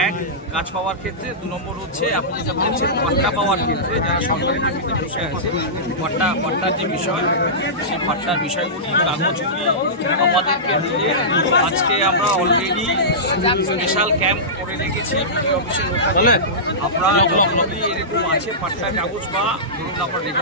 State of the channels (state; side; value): normal; both; correlation -0.18